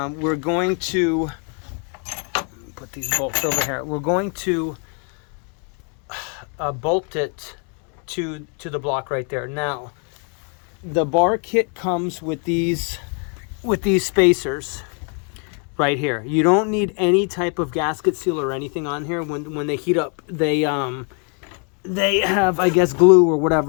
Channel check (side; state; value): right; quieter; 39.3 dB